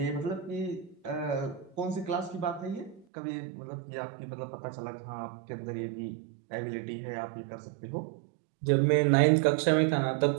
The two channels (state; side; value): drops out; left; at 3.1 s